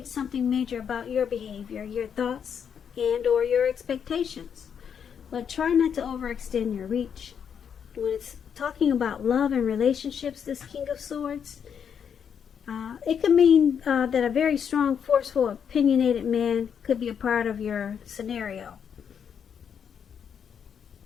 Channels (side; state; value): right; quieter; 7.6 dB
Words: something major about your behavior, your thoughts, and or your expectations. But try not to overextend your reach. When it's talking about love and relationships, this King of Swords, it could mean that a very strong, forceful, opinionated man could be a part of your scenario.